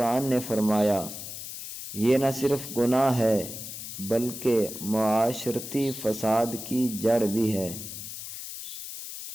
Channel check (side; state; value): left; noise; hiss, 9 dB below the sound